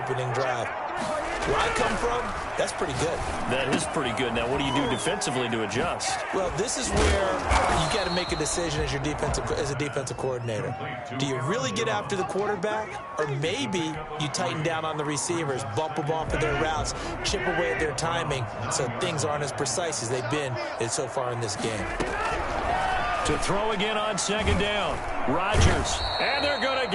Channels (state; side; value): identical; both; correlation 1.00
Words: drive. Where I come from, that's pretty good. That is pretty good. Now, what do you do defensively to adjust? Well, this is where you got to make a decision as a defensive coordinator. Do you really get after the quarterback, or maybe you tighten down on the receivers, bump them off of their routes, chip away at their timing, so things aren't as precise as they've been so far in this game. To throw again on 2nd down, Rodgers, and they're going to